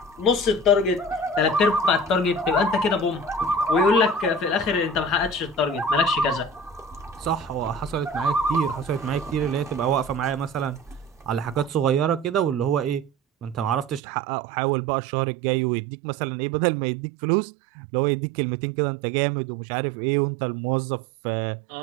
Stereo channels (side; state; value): left; drops out; at 14.0 s